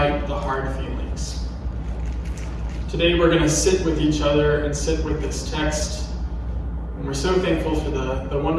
the hard feelings. Today we're going to sit with each other and sit with this text. And we're so thankful for the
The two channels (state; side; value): identical; both; correlation 1.00